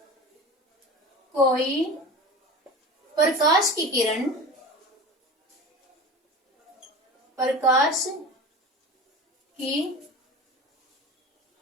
कोई प्रकाश की किरण, प्रकाश की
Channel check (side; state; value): both; normal; correlation 0.33